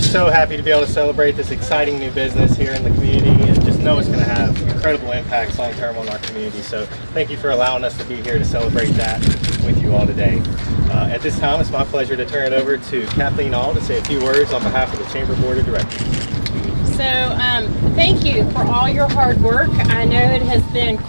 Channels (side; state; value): both; inverted; correlation -1.00